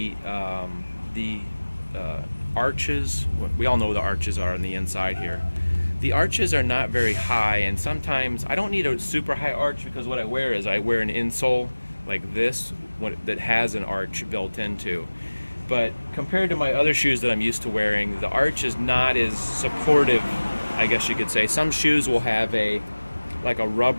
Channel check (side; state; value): both; inverted; correlation -1.00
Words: arches, we all know what the arches are on the inside here. The arches are not very high, and sometimes I don't need a super high arch because what I wear is I wear an insole like this that has an arch built into. But compared to my other shoes that I'm used to wearing, the arch is not as supportive, I guess you could say. Some shoes will have like a